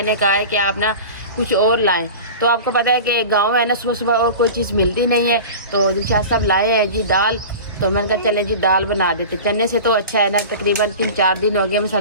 कहा है कि आप ना कुछ और लाएं। तो आपको पता है कि गाँव है ना, सुबह सुबह और कोई चीज़ मिलती नहीं है। तो दिलशाद साहब लाए हैं जी दाल। तो मैंने कहा चले जी दाल बना देते। चने से तो अच्छा है ना, तकरीबन 3-4 दिन हो गए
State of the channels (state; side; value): inverted; both; correlation -0.35